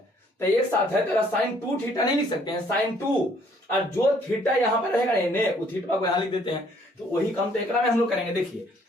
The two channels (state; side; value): normal; both; correlation 0.63